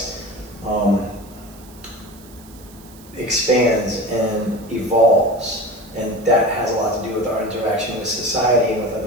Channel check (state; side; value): noise; right; hiss, 23 dB below the sound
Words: expands and evolves, and that has a lot to do with our interaction with society and with